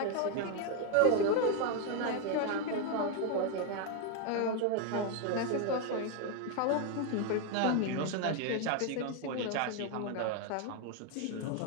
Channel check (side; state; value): both; different; correlation 0.01